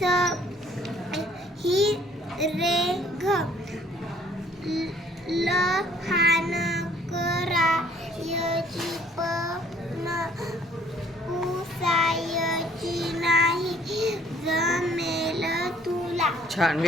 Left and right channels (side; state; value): both; normal; correlation 0.60